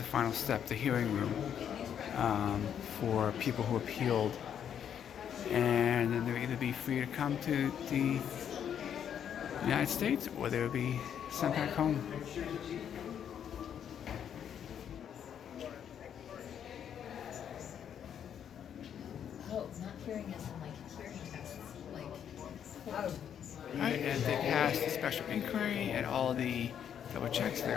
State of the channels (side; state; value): right; quieter; 8.8 dB